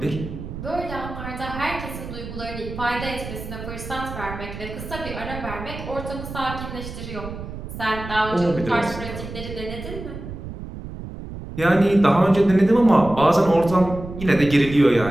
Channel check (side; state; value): right; noise; rumble, 10 dB below the sound